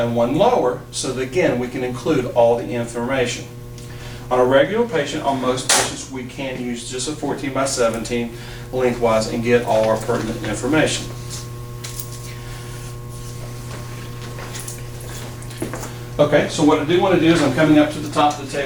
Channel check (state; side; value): identical; both; correlation 1.00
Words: one lower, so that again we can include all the information. On a regular patient, on most patients, we can use just a 14 by 17 lengthwise and get all our pertinent information. Okay, so what I do want to do is I'm coming up to the top of the